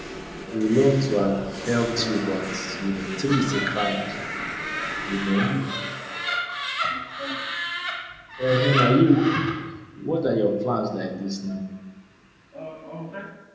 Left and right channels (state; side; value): identical; both; correlation 1.00